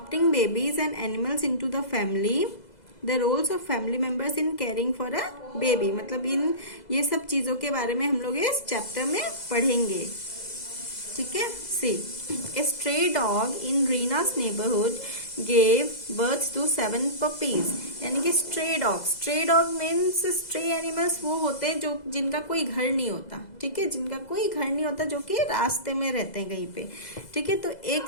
babies and animals into the family, the roles of family members in caring for a baby. मतलब इन ये सब चीजों के बारे में हम लोग इस चैप्टर में पढ़ेंगे. ठीक है. See, a stray dog in Reena's neighborhood gave birth to 7 puppies. यानी कि stray dog means stray animals वो होते हैं जो जिनका कोई घर नहीं होता. ठीक है, जिनका कोई घर नहीं होता, जो कि रास्ते में रहते हैं कहीं पे. ठीक है, तो एक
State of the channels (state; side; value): late; right; 2.0 ms